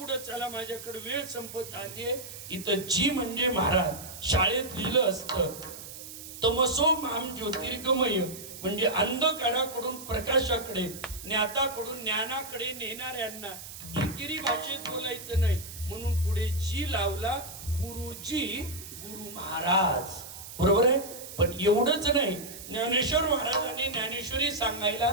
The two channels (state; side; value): noise; right; hiss, 12 dB below the sound